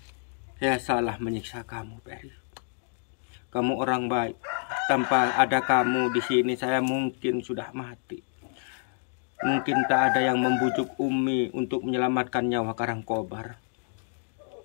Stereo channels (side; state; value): right; silent; 59 dB below the other